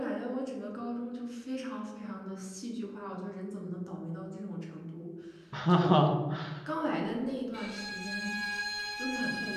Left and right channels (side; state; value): both; identical; correlation 1.00